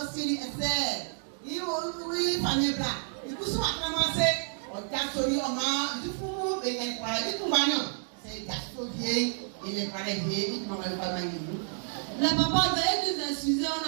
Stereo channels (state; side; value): silent; left; 58 dB below the other